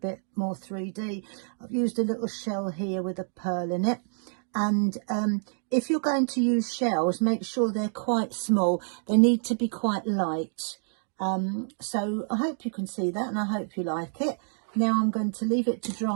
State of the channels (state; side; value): silent; left; digital silence